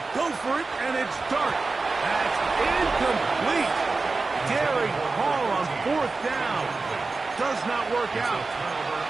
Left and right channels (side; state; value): left; quieter; 3.9 dB